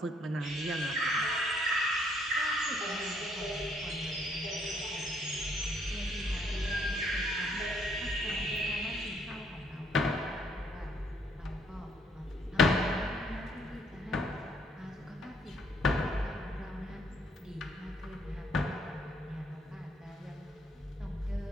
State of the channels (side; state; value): both; normal; correlation 0.68